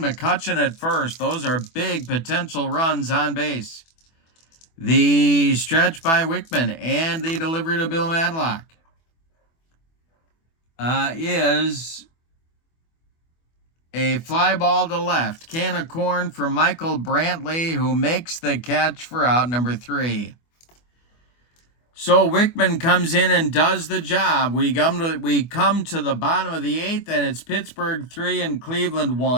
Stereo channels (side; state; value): right; late; 24 ms